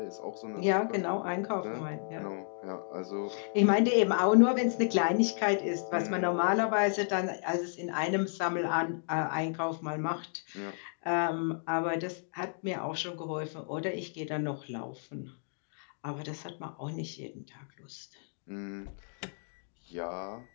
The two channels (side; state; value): right; silent; digital silence